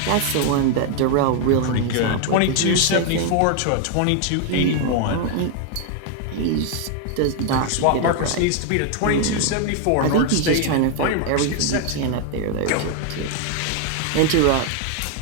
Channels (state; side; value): different; both; correlation 0.00